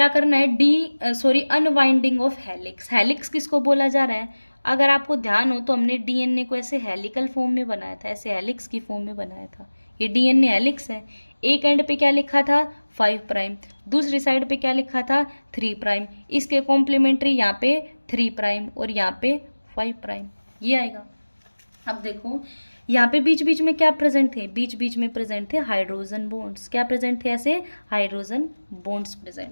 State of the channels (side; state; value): both; inverted; correlation -1.00